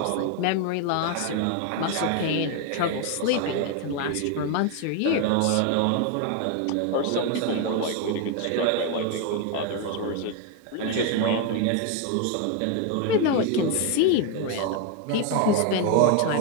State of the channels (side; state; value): both; different; correlation 0.01